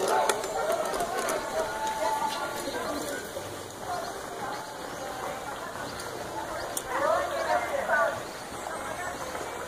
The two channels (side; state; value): both; identical; correlation 1.00